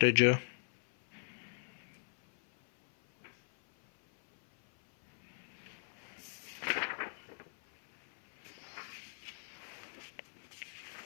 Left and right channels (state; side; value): silent; right; 52 dB below the other